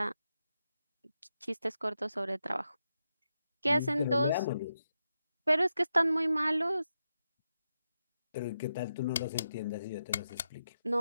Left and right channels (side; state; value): both; inverted; correlation -0.87